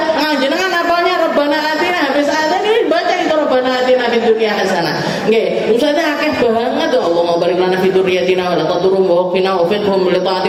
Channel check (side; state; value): both; identical; correlation 1.00